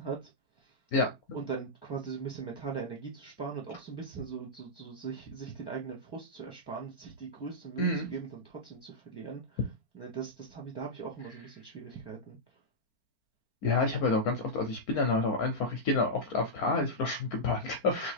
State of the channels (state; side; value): late; right; 4.4 ms